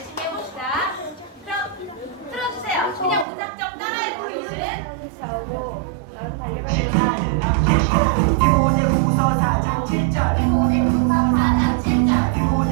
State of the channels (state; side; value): drops out; left; at 3.2 s